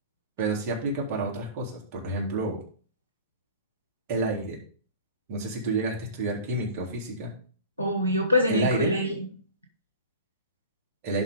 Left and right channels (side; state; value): both; inverted; correlation -0.38